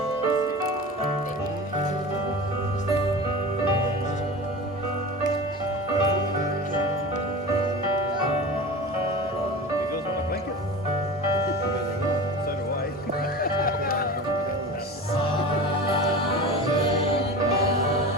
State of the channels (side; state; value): both; normal; correlation 0.32